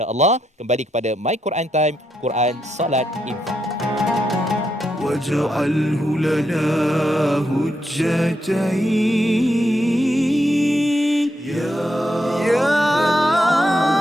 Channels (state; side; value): normal; both; correlation 0.81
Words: kembali kepada My Quran Time, Quran, Salat, Infak. واجعله لنا هجتين يا